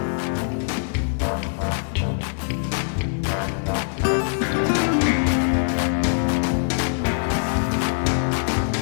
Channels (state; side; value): silent; right; 59 dB below the other